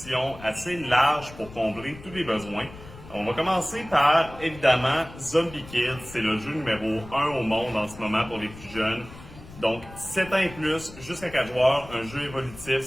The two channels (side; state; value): left; noise; rumble, 17 dB below the sound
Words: assez large pour combler tous les besoins. On va commencer par, évidemment, Zombie Kids. C'est le jeu numéro 1 au monde en ce moment pour les plus jeunes. Donc, 7 ans et plus, jusqu'à 4 joueurs, un jeu évolutif.